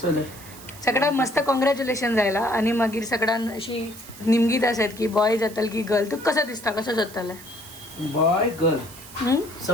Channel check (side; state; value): right; noise; hiss, 18 dB below the sound